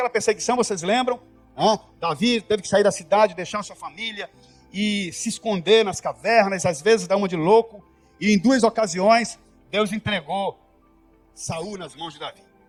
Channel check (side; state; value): both; identical; correlation 1.00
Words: perseguição, vocês lembram? Davi teve que sair da cidade, deixar sua família e se esconder nas cavernas, às vezes dá uma de louco. E em 2 ocasiões, Deus entregou Saul nas mãos de Davi.